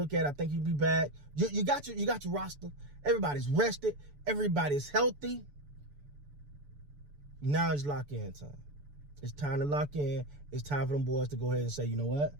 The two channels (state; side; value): late; left; 6.9 ms